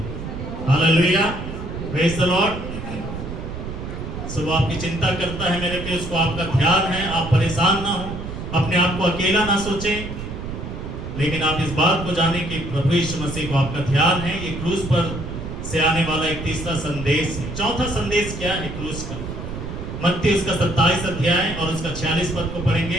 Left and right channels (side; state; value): right; noise; rumble, 8 dB below the sound